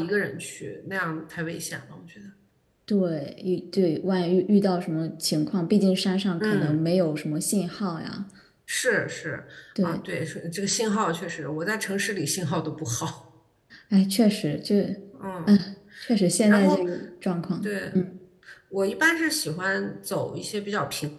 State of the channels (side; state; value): both; identical; correlation 1.00